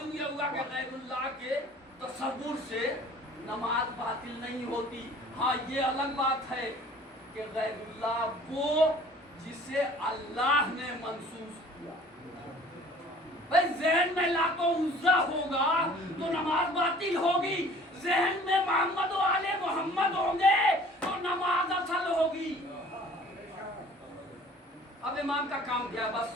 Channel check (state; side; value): normal; both; correlation 0.50